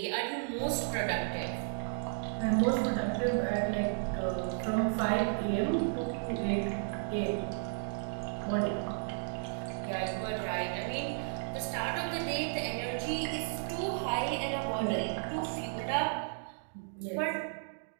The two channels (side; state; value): left; silent; digital silence